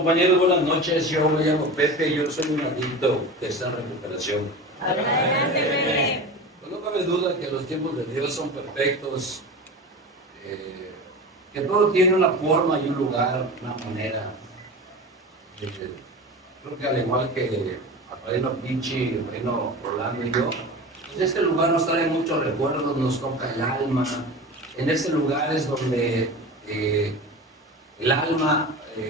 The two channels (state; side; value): normal; both; correlation 0.31